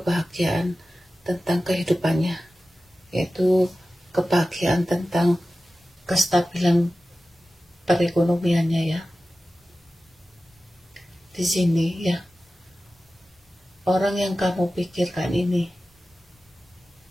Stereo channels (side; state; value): both; normal; correlation 0.95